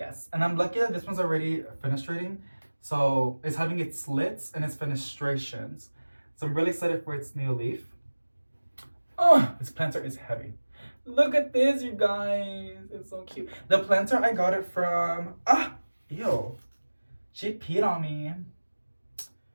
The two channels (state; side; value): inverted; both; correlation -1.00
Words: And I'm lucky that this one's already fenestrating. So, it's having its slits and its fenestrations. So, I'm really excited for its new leaf. Oh, this planter is heavy. Look at this, you guys. It's so cute. The planter, I got it from... Ew. She peed on me.